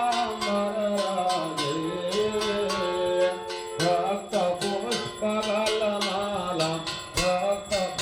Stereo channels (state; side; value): identical; both; correlation 1.00